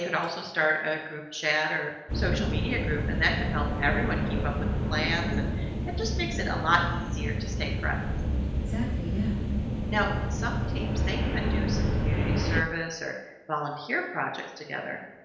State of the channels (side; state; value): both; identical; correlation 1.00